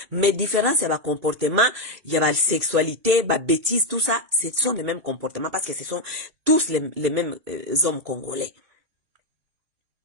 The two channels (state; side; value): late; left; 1.8 ms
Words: Mais différence ya ba comportement, ya ba sexualité, ba bêtise, tout ça, ce sont les mêmes comportements parce que ce sont tous les mêmes hommes congolais.